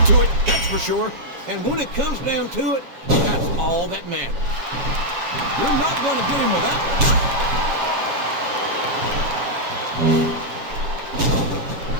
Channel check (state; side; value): late; left; 7.3 ms